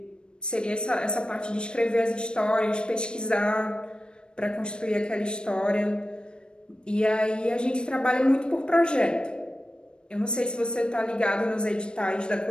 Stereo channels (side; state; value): right; late; 0.053 ms